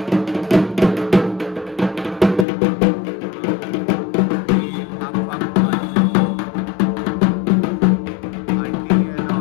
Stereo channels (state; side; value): drops out; right; at 2.5 s